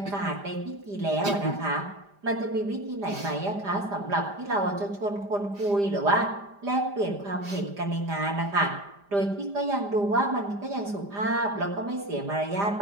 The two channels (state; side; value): late; left; 5.0 ms